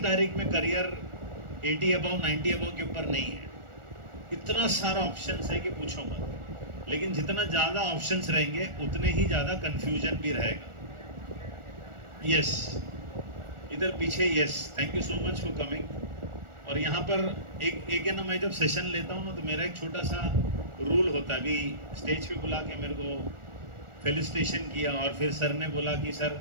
तारीख में करियर 80 अबव 90 अबव के ऊपर नहीं है। इतना सारा ऑप्शंस है कि पूछो मत। लेकिन जितना ज़्यादा ऑप्शंस रहेंगे उतने ही ज़्यादा कंफ्यूजन भी रहेगा। यस, इधर पीछे, yes, thank you so much for coming. और यहाँ पर एक है ना, मैं जब सेशन लेता हूँ ना तो मेरा एक छोटा सा रूल होता है। अभी स्टेज पे बुला के मेरे को फेलिसिटेशन किया, और फिर सर ने बोला कि sir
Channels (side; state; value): left; late; 1.4 ms